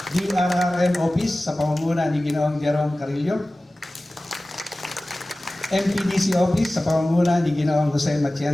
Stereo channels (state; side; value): normal; both; correlation 0.97